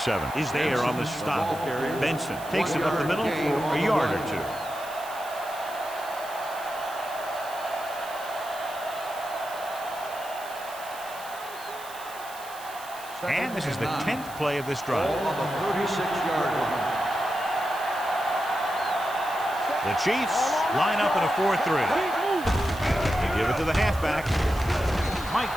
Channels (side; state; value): right; noise; hiss, 16 dB below the sound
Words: is there on the stop. Benson takes it up the middle for a yard or two. And this is the 10th play of this drive. On the 36-yard line. The Chiefs line up in a 4-3. They give it to the halfback.